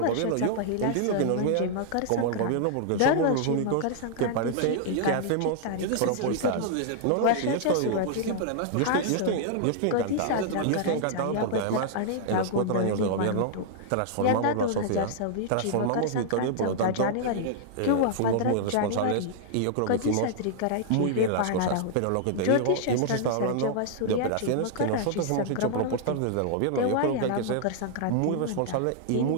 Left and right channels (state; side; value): different; both; correlation -0.01